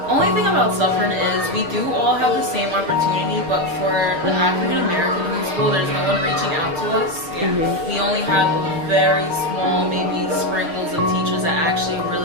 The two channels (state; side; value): late; left; 6.2 ms